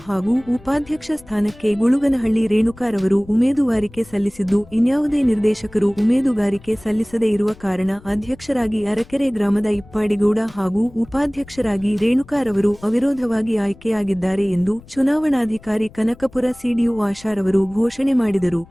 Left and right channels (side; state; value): left; noise; rumble, 23 dB below the sound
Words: ಹಾಗೂ ಉಪಾಧ್ಯಕ್ಷ ಸ್ಥಾನಕ್ಕೆ ಗುಳುಗನಹಳ್ಳಿ ರೇಣುಕಾರವರು ಉಮೇದುವಾರಿಕೆ ಸಲ್ಲಿಸಿದ್ದು, ಇನ್ಯಾವುದೇ ನಿರ್ದೇಶಕರು ಉಮೇದುವಾರಿಕೆ ಸಲ್ಲಿಸದೇ ಇರುವ ಕಾರಣ ಅಧ್ಯಕ್ಷರಾಗಿ ಅರಕೆರೆ ಗ್ರಾಮದ ಇಪ್ಪಾಡಿಗೌಡ ಹಾಗೂ ಉಪಾಧ್ಯಕ್ಷರಾಗಿ ರೇಣುಕಾರವರು ಅವಿರೋಧವಾಗಿ ಆಯ್ಕೆಯಾಗಿದ್ದಾರೆ ಎಂದು ಚುನಾವಣಾಧಿಕಾರಿ ಕನಕಪುರ ಸಿಡಿಒ ಆಶಾರವರು ಘೋಷಣೆ ಮಾಡಿದರು.